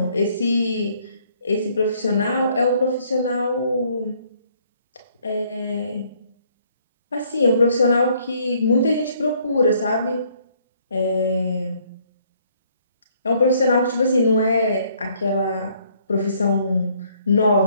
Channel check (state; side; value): inverted; both; correlation -0.65